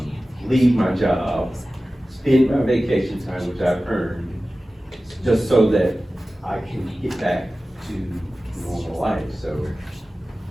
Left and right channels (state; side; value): normal; both; correlation 0.96